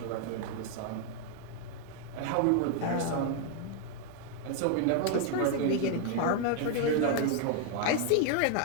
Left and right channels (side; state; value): both; different; correlation 0.00